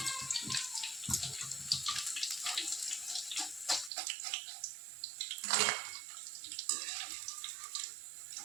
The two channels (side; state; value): left; drops out; at 3.9 s